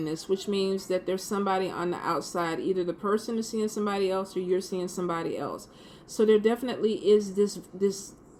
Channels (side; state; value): both; identical; correlation 1.00